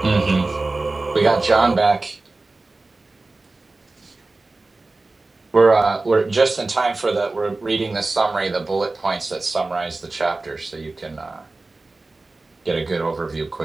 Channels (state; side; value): quieter; left; 3.3 dB